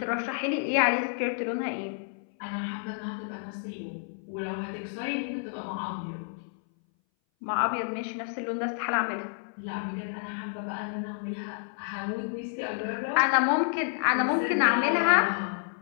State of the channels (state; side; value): silent; right; 58 dB below the other